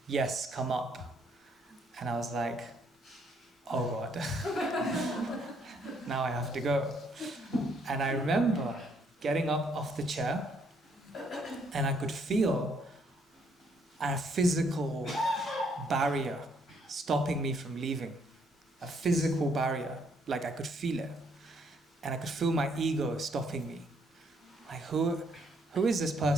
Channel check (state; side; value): normal; both; correlation 0.69